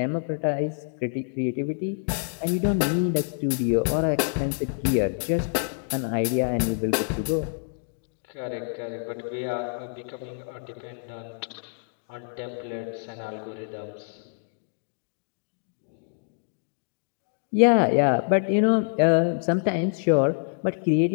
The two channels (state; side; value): silent; right; digital silence